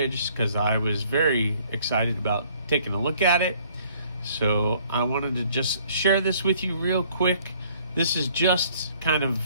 because I was very excited about taking a look at it. So I wanted to just share this with you real quick. This is just kind of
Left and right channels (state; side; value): inverted; both; correlation -0.60